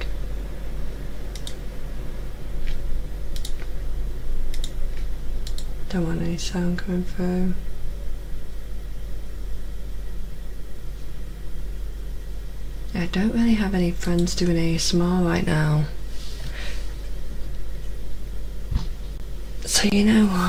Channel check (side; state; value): both; identical; correlation 1.00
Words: Don't want any sound coming through. I don't really have any friends doing ASMR right now. So you know